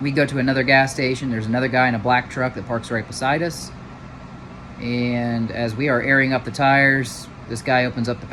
We go to another gas station. There's another guy in a black truck that parks right beside us. And as we are airing up the tires, this guy opens up the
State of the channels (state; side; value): identical; both; correlation 1.00